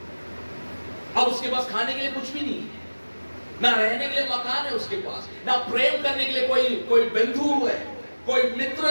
अब उसके पास खाने के लिए कुछ भी नहीं है, ना रहने के लिए मकान है उसके पास, ना प्रेम करने के लिए कोई बंधु है, कोई मित्र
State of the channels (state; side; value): inverted; both; correlation -1.00